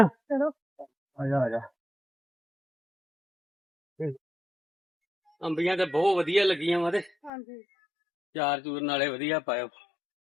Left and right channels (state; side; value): drops out; right; at 7.3 s